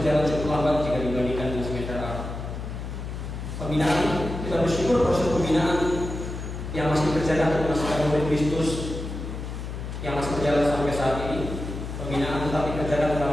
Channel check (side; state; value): left; noise; hum, 7 dB below the sound